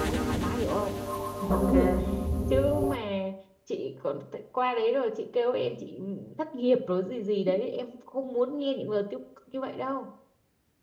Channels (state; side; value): identical; both; correlation 1.00